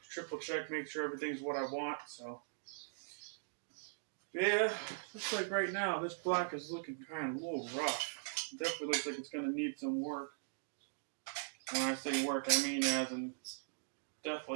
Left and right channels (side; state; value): left; silent; digital silence